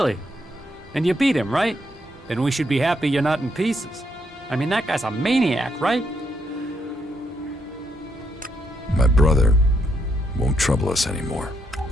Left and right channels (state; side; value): normal; both; correlation 0.76